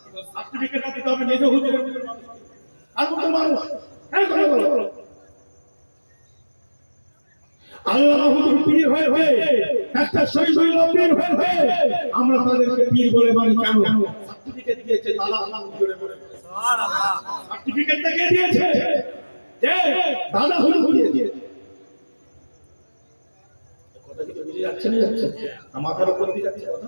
সার্টিফিকেটটা দিতে হবে মেজো হুজুরের মতন মানুষ। আর কত মানুষ হ্যাঁ কথা বলো, আল্লাহ হুজুর পীর হয়ে একটা শহীদ পীর হয়ে আমরা তাদেরকে পীর বলে মানি কেন? সার্টিফিকেট দিয়েছে তালা আল্লাহ জুড়ে বলে সুবহানাল্লাহ। সার্টিফিকেটটা কে দিয়েছে? যে দাদা হুজুর দিয়েছে। কথা কি বুঝে যাচ্ছে না? যাচ্ছে না, মাথার উপর দিয়ে যাচ্ছে কথা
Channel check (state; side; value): inverted; both; correlation -1.00